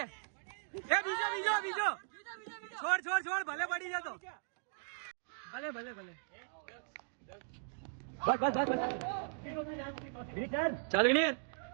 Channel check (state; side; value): silent; left; digital silence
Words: છોડ ભલે પડી જતો ભલે ચાલ વિનીત